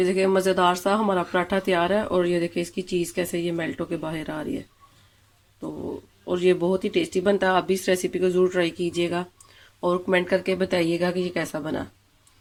देखिए मज़ेदार सा हमारा पराठा तैयार है और ये देखिए इसकी चीज़ कैसे ये मेल्ट होके बाहर आ रही है। तो और ये बहुत ही टेस्टी बनता है। आप भी इस रेसिपी को ज़रूर ट्राई कीजिएगा और कमेंट करके बताइएगा कि ये कैसा बना।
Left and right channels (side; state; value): both; identical; correlation 1.00